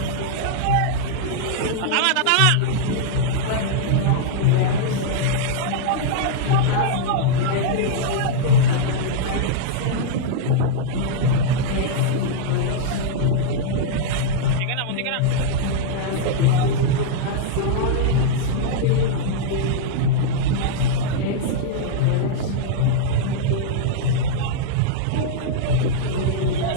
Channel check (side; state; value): both; different; correlation -0.02